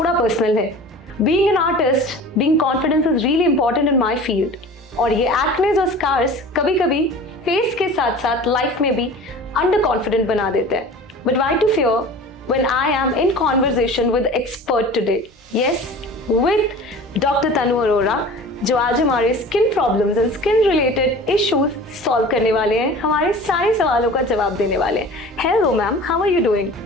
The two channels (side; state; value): both; normal; correlation 0.40